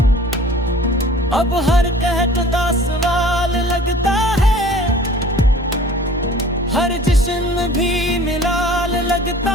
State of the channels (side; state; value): both; normal; correlation 0.47